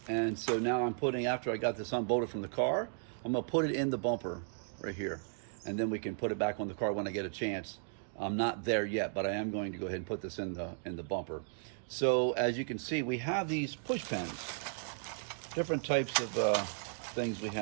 And so now I'm putting, after I got this unbolted from the car, I'm gonna put it in the bumper right here. And then we can put it back on the car when I get a chance. I'm not there yet, but I am going to go ahead and put this in the bumper. So as you can see, we have these push pins. Different types of things we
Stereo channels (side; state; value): left; silent; digital silence